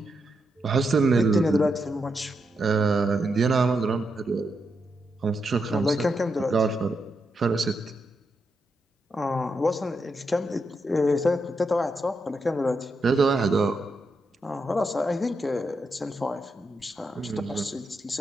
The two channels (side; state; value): both; normal; correlation 0.83